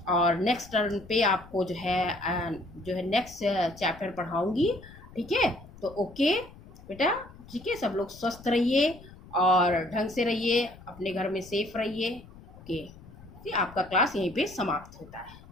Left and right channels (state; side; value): noise; left; rumble, 20 dB below the sound